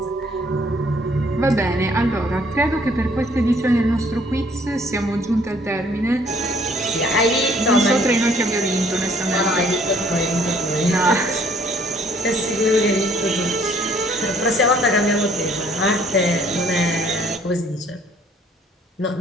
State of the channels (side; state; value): both; normal; correlation 0.60